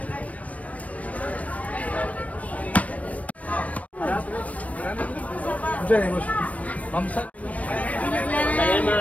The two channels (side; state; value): right; late; 0.068 ms